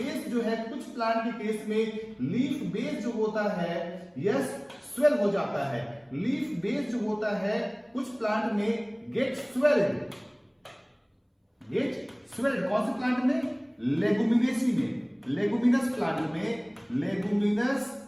जो है, कुछ प्लांट के केस में लीफ बेस जो होता है, यस, स्वेल हो जाता है। लीफ बेस जो होता है कुछ प्लांट में गेट स्वेल्ड, कौन से प्लांट में? लेगुमिनेसी में, लेगुमिनस प्लांट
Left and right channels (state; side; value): identical; both; correlation 1.00